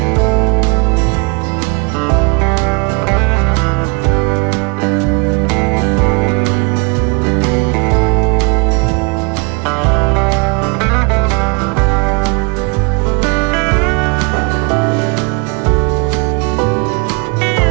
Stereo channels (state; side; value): quieter; left; 31.1 dB